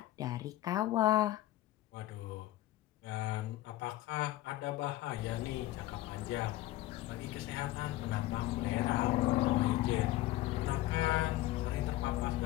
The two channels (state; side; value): quieter; right; 16.0 dB